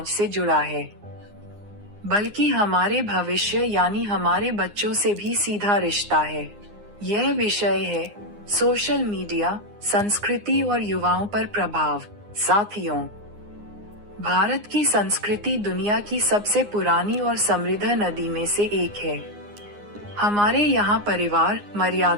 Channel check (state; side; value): late; left; 9.7 ms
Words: से जुड़ा है बल्कि हमारे भविष्य यानी हमारे बच्चों से भी सीधा रिश्ता है। यह विषय है सोशल मीडिया, संस्कृति और युवाओं पर प्रभाव। साथियों, भारत की संस्कृति दुनिया की सबसे पुरानी और समृद्ध नदी में से एक है। हमारे यहाँ परिवार,